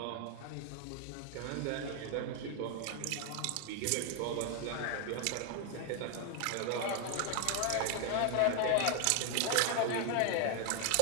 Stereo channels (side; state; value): both; different; correlation 0.00